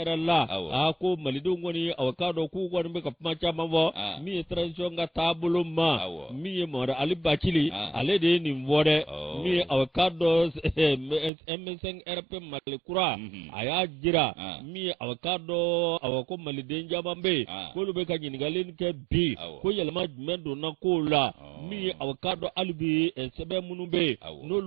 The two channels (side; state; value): left; drops out; at 11.3 s